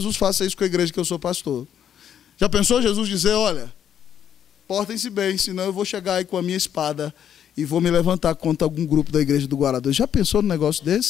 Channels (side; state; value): right; quieter; 9.3 dB